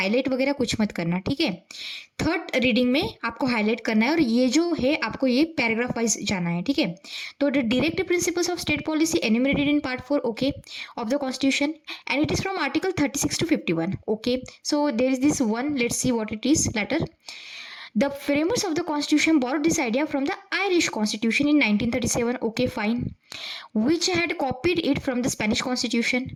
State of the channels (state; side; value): identical; both; correlation 1.00